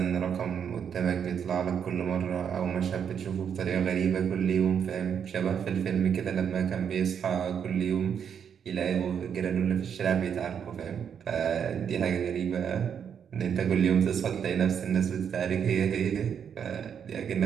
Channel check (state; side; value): quieter; left; 7.8 dB